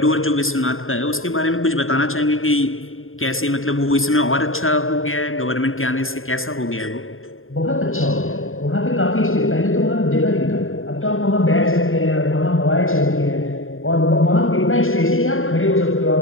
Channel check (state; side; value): late; right; 0.60 ms